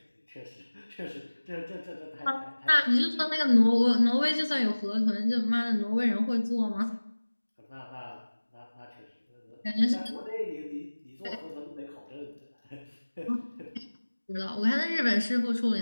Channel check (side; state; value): both; inverted; correlation -1.00